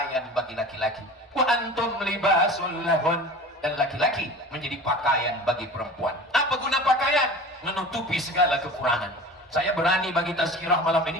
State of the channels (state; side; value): normal; both; correlation 0.37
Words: bagi laki-laki. Wa antum libasul lahun. Dan laki-laki menjadi pakaian bagi perempuan. Apa guna pakaian? Menutupi segala kekurangan. Saya berani bagi tazkirah malam